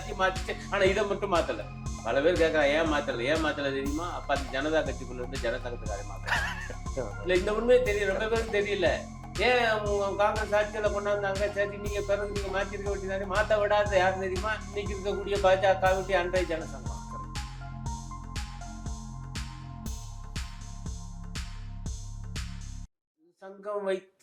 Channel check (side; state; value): both; identical; correlation 1.00